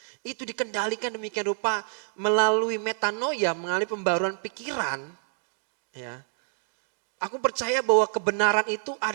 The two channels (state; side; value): silent; left; 56 dB below the other